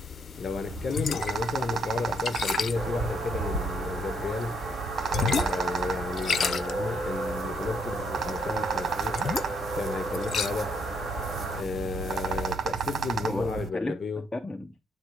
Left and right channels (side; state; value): both; normal; correlation 0.71